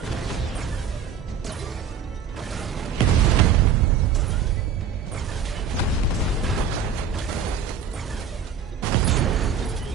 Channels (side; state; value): left; quieter; 7.0 dB